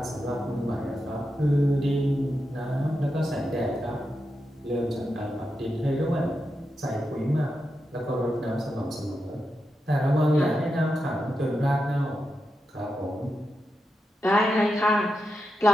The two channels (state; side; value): normal; both; correlation 0.88